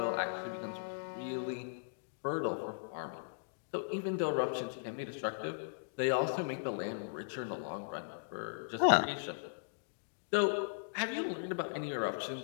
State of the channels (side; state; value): right; silent; digital silence